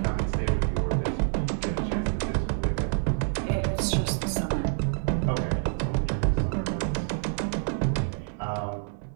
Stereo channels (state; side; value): silent; left; 60 dB below the other